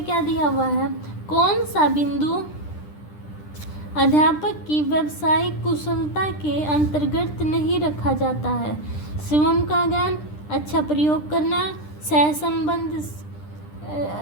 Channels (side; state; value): right; late; 10 ms